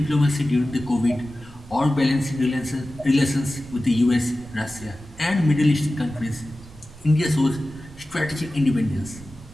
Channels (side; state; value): right; noise; rumble, 20 dB below the sound